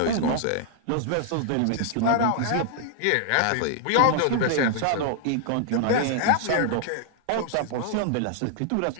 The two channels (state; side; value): different; both; correlation 0.00